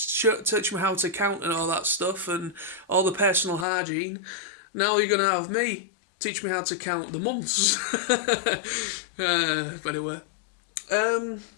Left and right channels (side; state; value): right; drops out; at 3.7 s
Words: how to count and all that stuff and all the personal hygiene. Now you're gonna have me teach me how to count the months." But anyway,